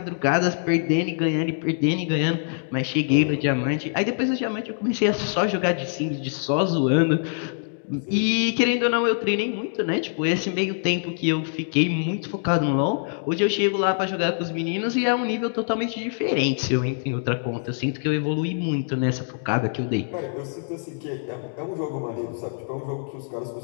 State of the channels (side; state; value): right; silent; digital silence